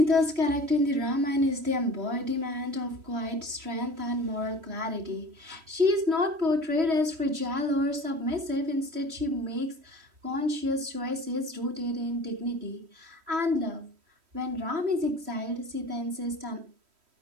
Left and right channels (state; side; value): late; left; 3.1 ms